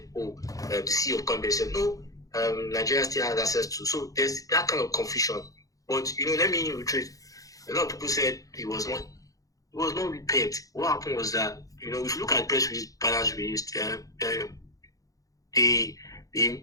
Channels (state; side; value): late; right; 0.17 ms